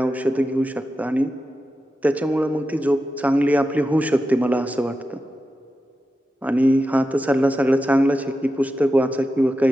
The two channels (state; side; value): normal; both; correlation 0.91